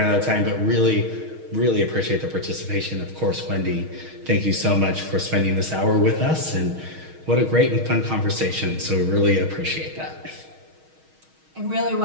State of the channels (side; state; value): left; late; 6.4 ms